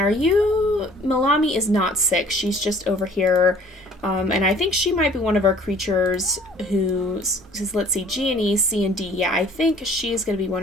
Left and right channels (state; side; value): normal; both; correlation 0.53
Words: you... Malami is not sick, she's just over here. And I think she might be one of our creatures who, let's see, G and E, C and D. Yeah, I think she's going to be one